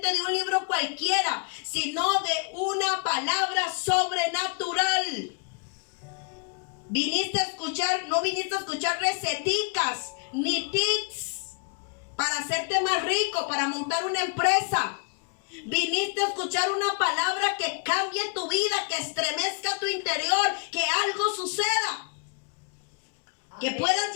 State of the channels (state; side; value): quieter; right; 38.4 dB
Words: de un libro cualquiera, sino de una palabra sobrenatural. Viniste a escuchar, no viniste a escuchar receticas ni tips para hacerte más rico, para montar una empresa. Viniste a escuchar una palabra que cambie tu vida, que estremezca tu interior, que algo suceda. Que puedas